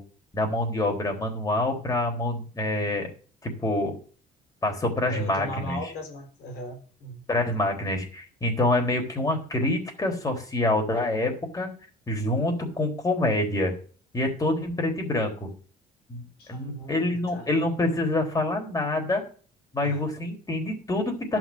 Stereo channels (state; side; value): normal; both; correlation 0.40